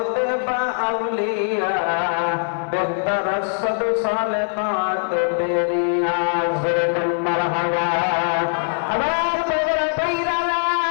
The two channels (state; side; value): silent; right; digital silence